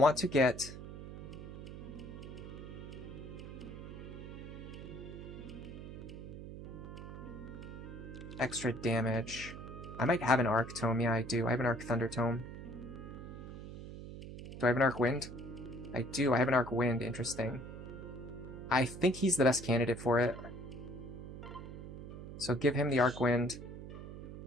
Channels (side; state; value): right; noise; hum, 11 dB below the sound